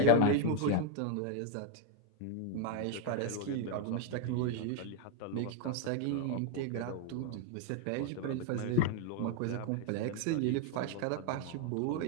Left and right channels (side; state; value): both; different; correlation 0.01